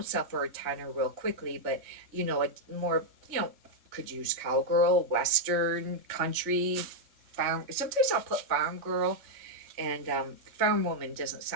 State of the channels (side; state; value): left; late; 3.1 ms